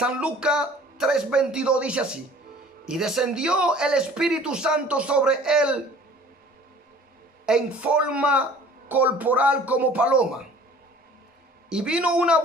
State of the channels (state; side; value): normal; both; correlation 0.49